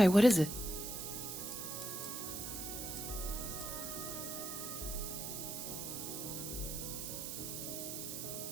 What is it?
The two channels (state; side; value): noise; right; hiss, 5 dB below the sound